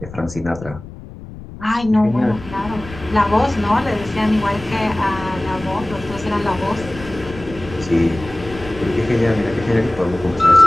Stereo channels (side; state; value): left; noise; rumble, 15 dB below the sound